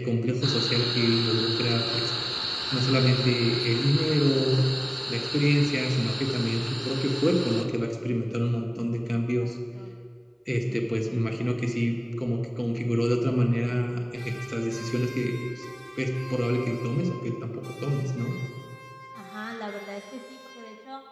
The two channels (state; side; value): identical; both; correlation 1.00